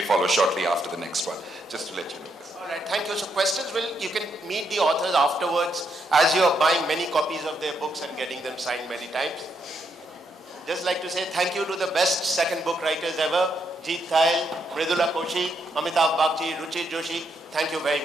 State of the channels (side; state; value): both; normal; correlation 0.78